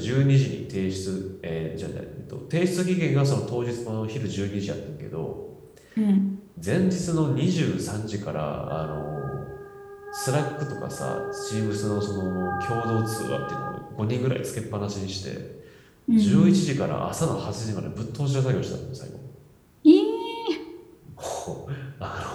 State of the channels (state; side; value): identical; both; correlation 1.00